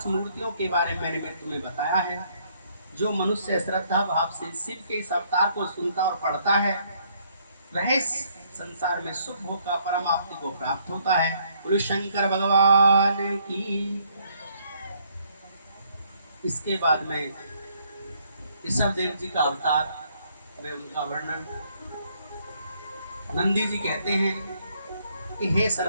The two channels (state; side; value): inverted; both; correlation -0.68